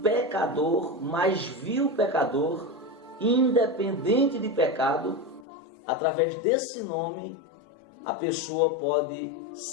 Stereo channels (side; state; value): right; drops out; at 5.5 s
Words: pecador, mais vil pecador, independente de pecado. Através desse nome a pessoa pode